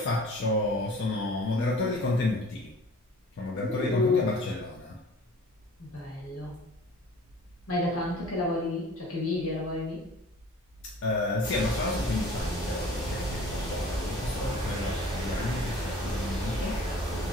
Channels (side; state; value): both; normal; correlation 0.47